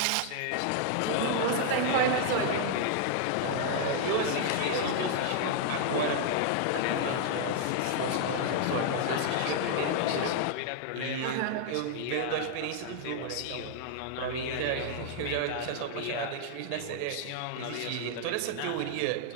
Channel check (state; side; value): different; both; correlation -0.01